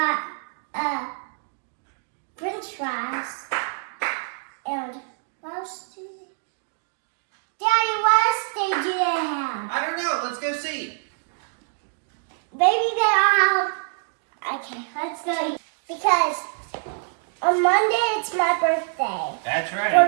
French fries. And what else do they? Daddy, what else do they have? I don't know. Let's go see. Maybe they all have. Okay, let's go. Because on Monday it's my birthday. That's right.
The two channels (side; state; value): left; silent; 62 dB below the other